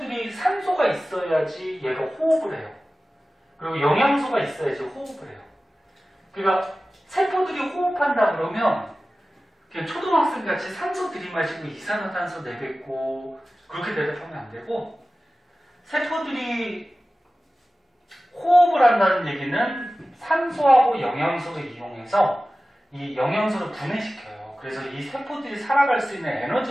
산소가 있어야지 얘가 호흡을 해요. 그리고 영양소가 있어야지 호흡을 해요. 그러니까 세포들이 호흡한다 그러면 그냥 초등학생 같이 산소 들이마시고 이산화탄소 내뱉고 그렇게 대답하면 안 되고, 세포들이 호흡을 한다는 얘기는 산소하고 영양소를 이용해서 이 영양소를 분해시켜요. 그래서 이 세포들이 살아갈 수 있는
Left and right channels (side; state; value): both; normal; correlation 0.96